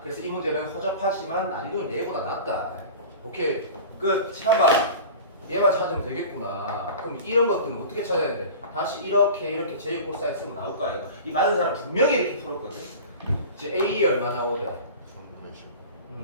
그래서 이 문제는 허접하지만 난이도는 얘보다 낫다. 오케이. 끝. 참봐. 얘만 찾으면 되겠구나. 그럼 이런 것들은 어떻게 찾아야 돼? 다시 이렇게 제일 코사인 쓰면 나올 거 아이가. 이 많은 사람 분명히 이렇게 풀었거든. 이제 A 얼마 나오래?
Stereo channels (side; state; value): both; inverted; correlation -0.37